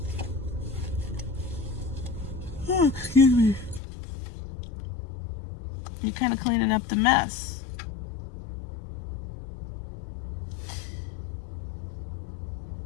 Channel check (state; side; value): drops out; right; at 3.8 s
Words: excuse me, you're kind of cleaning up the mess.